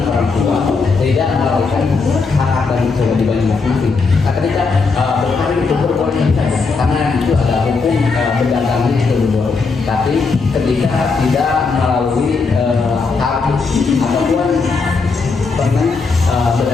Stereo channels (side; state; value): right; quieter; 4.5 dB